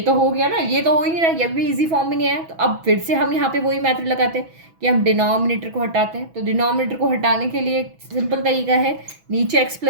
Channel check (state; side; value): late; left; 6.1 ms